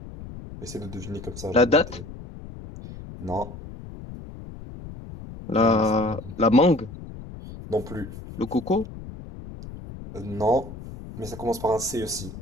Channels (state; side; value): noise; left; rumble, 13 dB below the sound